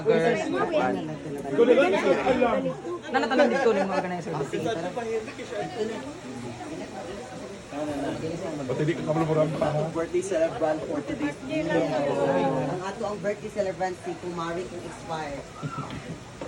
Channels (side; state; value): both; identical; correlation 1.00